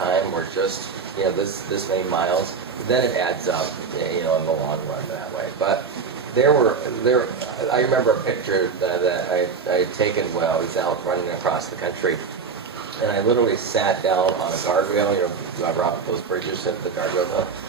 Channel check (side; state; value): left; quieter; 5.5 dB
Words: or just, you know, this many miles, then it adds up, you know, in the long run that way. But I remember a picture that I had taken while I was out running across the country, and I literally sat down on a guardrail. You know, you ever off those bridges at the guardrail?